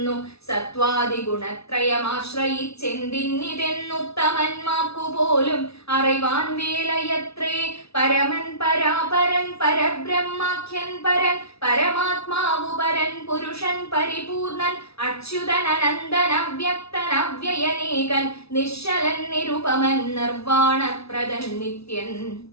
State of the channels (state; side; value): late; right; 0.78 ms